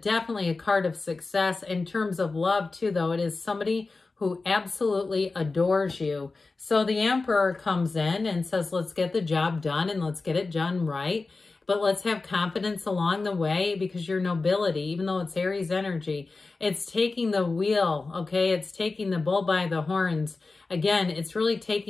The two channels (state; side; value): quieter; right; 3.7 dB